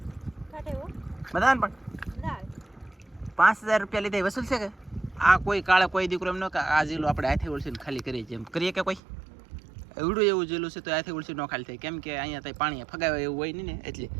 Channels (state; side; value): drops out; left; at 9.0 s